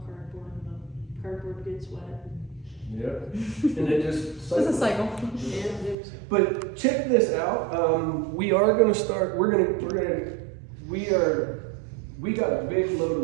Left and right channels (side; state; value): left; drops out; at 6.0 s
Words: cardboard and the cardboard gets wet. Yep. And it just It's a cycle. Yeah, it was- But check this out. We are going to start. We got a big load